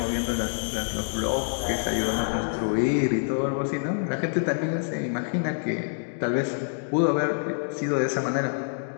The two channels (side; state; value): right; silent; digital silence